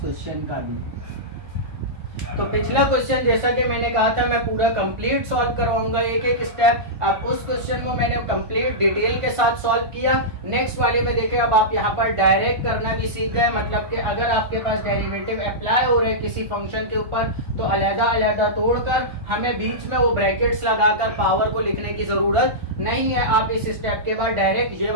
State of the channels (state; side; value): late; left; 1.5 ms